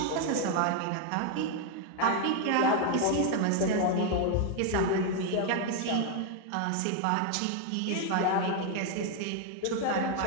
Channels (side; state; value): both; different; correlation 0.01